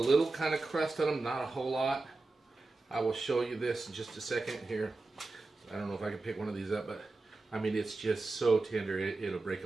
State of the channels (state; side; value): quieter; left; 3.4 dB